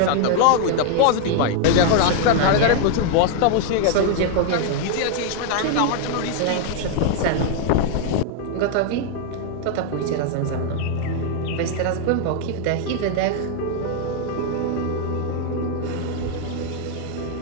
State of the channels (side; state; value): both; different; correlation 0.00